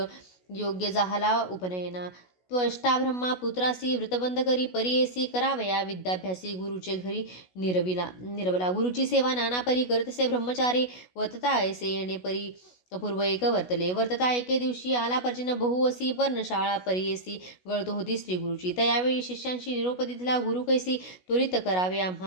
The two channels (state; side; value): late; right; 16 ms